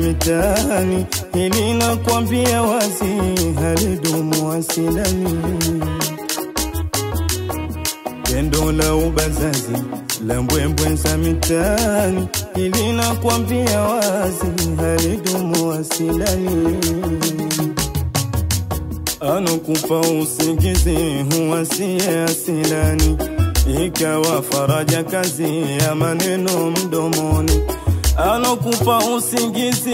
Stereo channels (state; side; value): identical; both; correlation 1.00